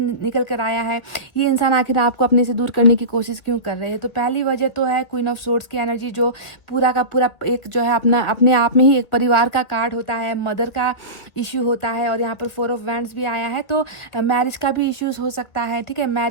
कर आया है। ये इंसान आखिर आपको अपने से दूर करने की कोशिश क्यों कर रहे हैं? तो पहली वजह तो है क्वीन ऑफ सोर्ड्स की एनर्जी, जो पूरा का पूरा एक जो है अपने आप में ही एक परिवार का कार्ड होता है, मदर का इश्यू होता है। और यहाँ पर 4 ऑफ वैंड्स भी आया है, तो मैरिज का भी इश्यूज हो सकता है। ठीक है,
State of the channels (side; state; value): right; late; 2.1 ms